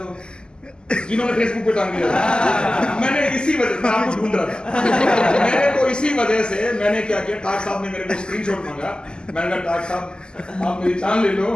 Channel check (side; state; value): right; late; 0.047 ms